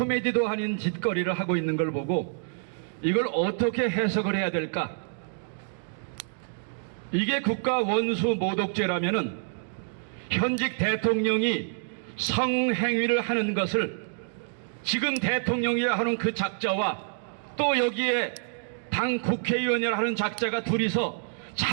아닌 짓거리를 하고 있는 걸 보고 이걸 어떻게 해석을 해야 될까? 이게 국가 원수 모독죄라면은 현직 대통령이 성행위를 하는 것을 지금 대통령이 하는 그 작자와 또 여기에 당 국회의원이라 하는 작자가 둘이서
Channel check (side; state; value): left; silent; digital silence